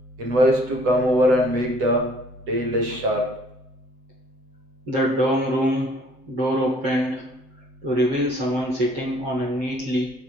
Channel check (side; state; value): left; late; 8.0 ms